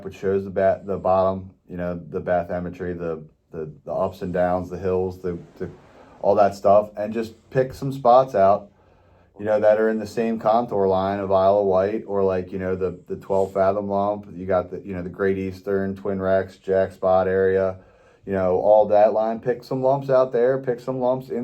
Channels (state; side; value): identical; both; correlation 1.00